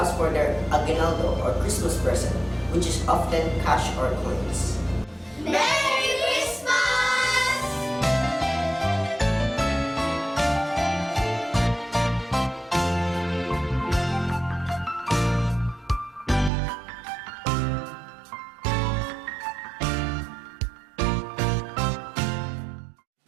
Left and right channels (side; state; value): left; drops out; at 16.5 s